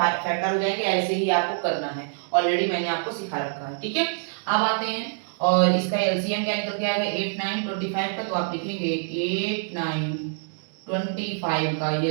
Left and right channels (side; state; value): left; silent; digital silence